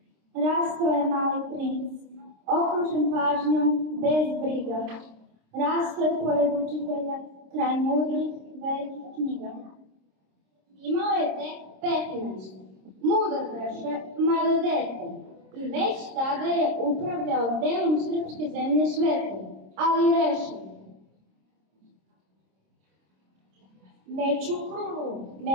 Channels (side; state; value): left; late; 26 ms